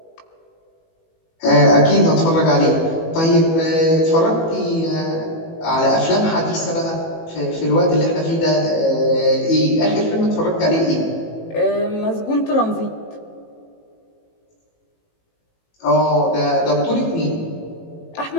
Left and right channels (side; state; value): right; late; 18 ms